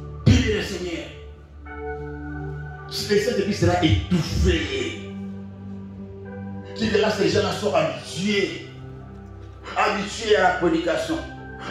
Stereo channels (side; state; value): both; identical; correlation 1.00